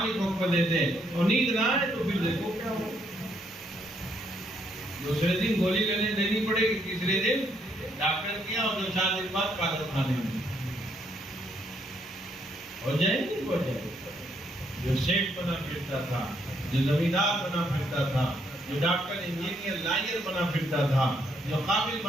حکم دے دے اور نیند نہ آئے تو پھر دیکھو کیا ہو، دوسرے دن گولی لینی پڑے گی، تیسرے دن ڈاکٹر کیا اور 2-4 دن بعد پاگل خانے میں ہو جائے گی۔ ہو جائے گی۔ جو سیٹ بنا پھرتا تھا، جو زمیندار بنا پھرتا تھا، جو ڈاکٹر انجینئر لائر بنا پھرتا تھا، جو قابل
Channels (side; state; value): both; normal; correlation 0.72